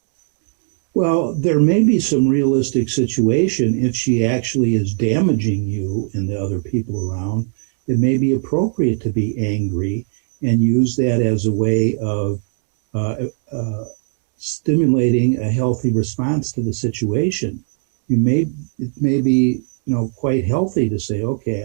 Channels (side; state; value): left; silent; digital silence